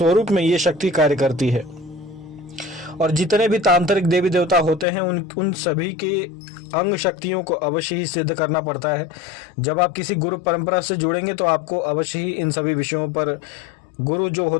में ये शक्ति कार्य करती है। और जितने भी तांत्रिक देवी देवता होते हैं उन सभी के अंग शक्तियों को अवश्य ही सिद्ध करना पड़ता है। जब आप किसी गुरु परंपरा से जुड़ेंगे तो आपको अवश्य ही इन सभी विषयों पर गुरु जो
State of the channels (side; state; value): right; drops out; at 4.9 s